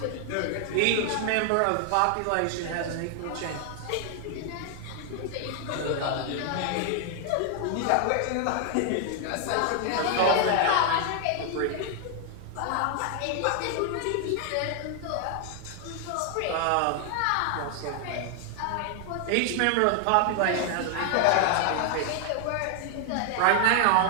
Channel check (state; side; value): different; both; correlation 0.00